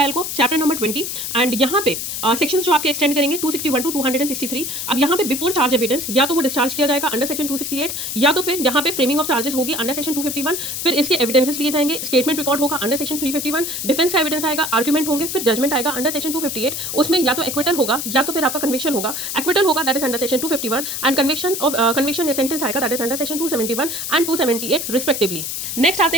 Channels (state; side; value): noise; left; hiss, 4 dB below the sound